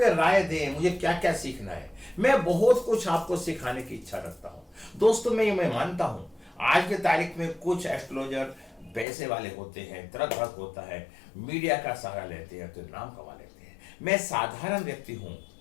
राय दें, मुझे क्या क्या सीखना है। मैं बहुत कुछ आपको सिखाने की इच्छा रखता हूं दोस्तों। मैं मानता हूं आज के तारीख में कुछ एस्ट्रोलॉजर पैसे वाले होते हैं, तरक भड़क होता है, मीडिया का सहारा लेते हैं तो नाम कमा लेते हैं। मैं साधारण व्यक्ति हूं,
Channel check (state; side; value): drops out; right; at 9.1 s